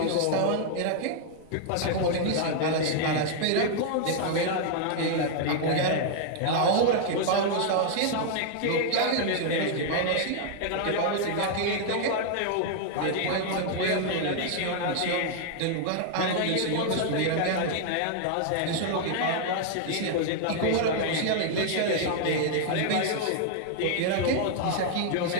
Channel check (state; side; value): different; both; correlation 0.00